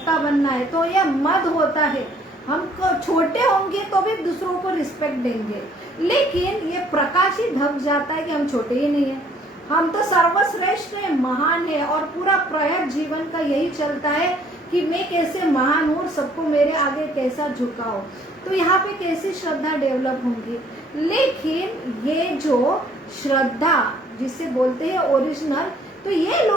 बनना है। तो यह मद होता है, हम छोटे होंगे तो भी दूसरों को रिस्पेक्ट देंगे, लेकिन ये प्रकाश ही ढक जाता है कि हम छोटे ही नहीं है, हम तो सर्वश्रेष्ठ है, महान है। और पूरा प्रयास जीवन का यही चलता है कि मैं कैसे महान हूँ, सबको मेरे आगे कैसा झुकाओ। तो यहाँ पे कैसी श्रद्धा डेवलप होंगी। लेकिन ये जो श्रद्धा जिसे बोलते हैं ओरिजिनल, तो ये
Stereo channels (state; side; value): normal; both; correlation 0.60